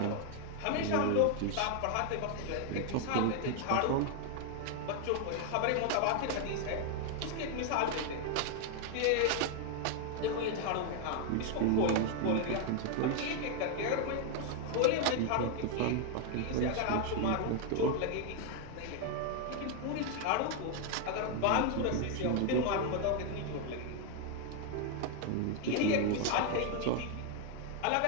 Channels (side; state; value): both; different; correlation 0.00